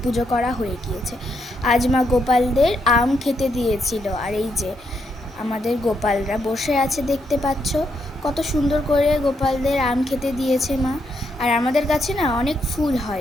পুজো করা হয়ে গিয়েছে। আজ মা গোপালদের আম খেতে দিয়েছিল, আর এই যে আমাদের গোপালরা বসে আছে দেখতে পাচ্ছ। কত সুন্দর করে গোপালদের আম খেতে দিয়েছে মা। আর আমাদের কাছে না অনেক ফুল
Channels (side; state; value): both; normal; correlation 0.78